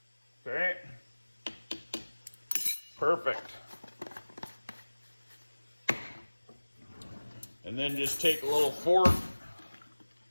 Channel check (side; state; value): both; inverted; correlation -1.00